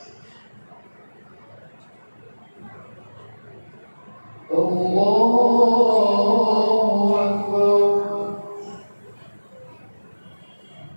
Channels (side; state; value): both; inverted; correlation -1.00